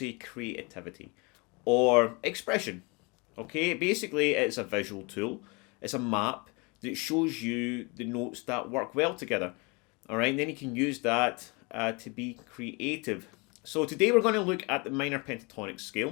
creativity or expression. Okay, basically it's a visual tool, it's a map that shows you the notes that work well together. Alright, and then you can use that to be creative. So today we're going to look at the minor pentatonic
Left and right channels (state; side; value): quieter; right; 28.9 dB